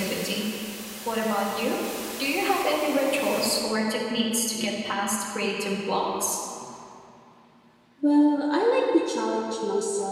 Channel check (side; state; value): both; identical; correlation 1.00